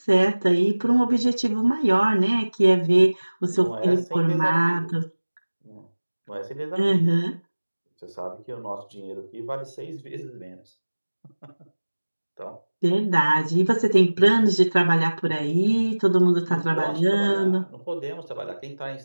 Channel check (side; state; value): both; inverted; correlation -1.00